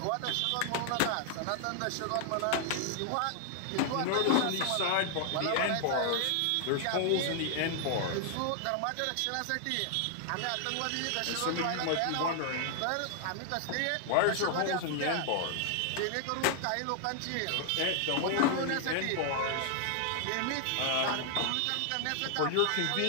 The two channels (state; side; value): different; both; correlation 0.00